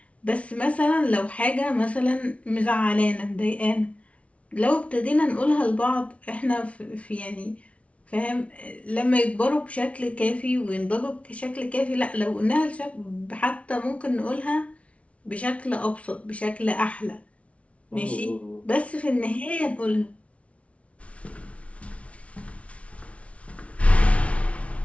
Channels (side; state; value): right; late; 0.063 ms